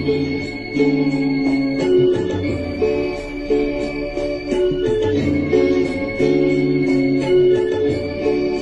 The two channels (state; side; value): identical; both; correlation 1.00